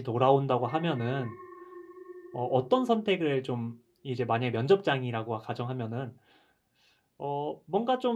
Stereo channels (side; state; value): both; identical; correlation 1.00